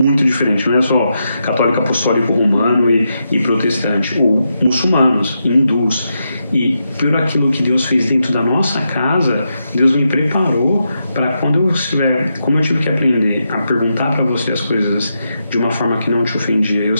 diferentes. Não é só católico apostólico romano e protestante, ou muçulmanos, hindus. E por aquilo que Deus fez dentro da nossa casa, Deus me preparou para quando eu estiver, como eu tive que aprender a perguntar para você as coisas de uma forma que não te ofendia, eu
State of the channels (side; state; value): both; inverted; correlation -0.84